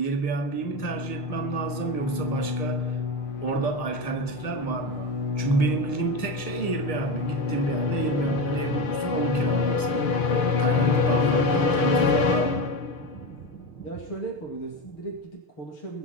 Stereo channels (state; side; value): late; right; 6.5 ms